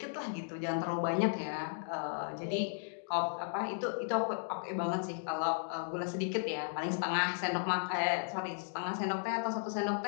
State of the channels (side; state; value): right; silent; digital silence